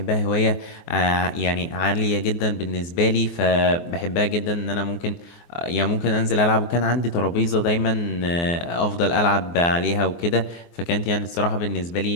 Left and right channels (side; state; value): right; late; 24 ms